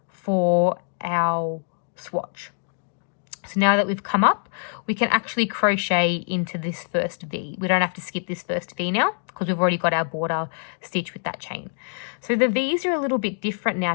for our swatch. So now that we've come up, we can actually crochet into this first V. We don't have to skip this first V now because we've already got our border stitch with that chain. So the V's are a little bit different now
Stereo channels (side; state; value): right; silent; digital silence